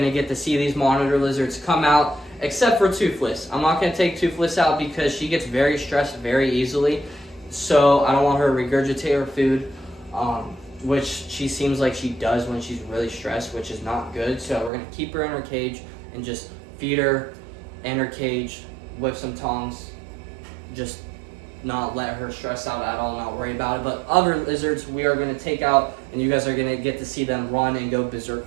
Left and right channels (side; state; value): left; drops out; at 14.7 s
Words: to get to see these monitor lizards come out, except for Toothless. I'm not going to take Toothless out because she gets very stressed very easily. So I don't want her to regurgitate her food, which she seems like she does when she's really stressed, which is not good. So we're going to keep her in her cage and just feed her in her cage with some tongs. Just not let her stress out at all, not worry about it. But other lizards we are going to take out, and you guys are going to get to see them run and go